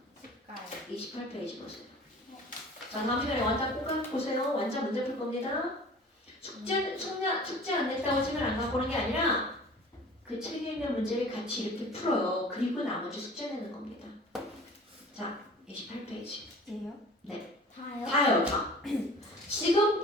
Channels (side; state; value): both; normal; correlation 0.44